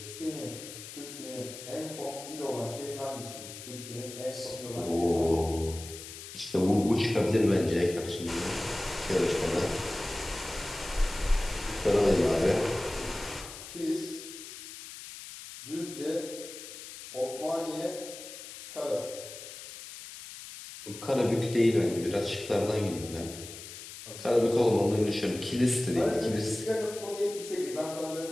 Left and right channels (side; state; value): left; noise; hiss, 12 dB below the sound